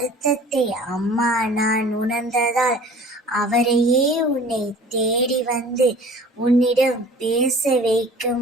அம்மா நான் உணர்ந்ததால் அவரையே உன்னை தேடி வந்து உன்னிடம் பேச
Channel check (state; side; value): normal; both; correlation 0.46